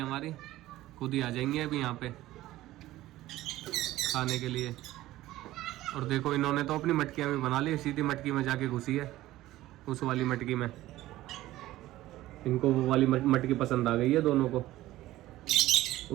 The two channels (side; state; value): left; quieter; 15.9 dB